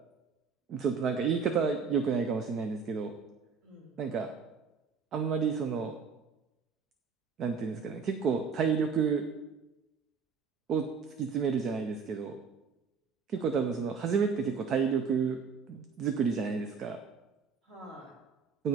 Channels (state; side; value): quieter; left; 5.6 dB